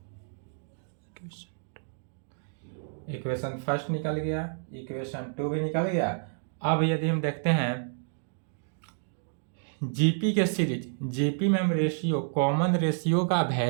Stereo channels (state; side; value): silent; left; digital silence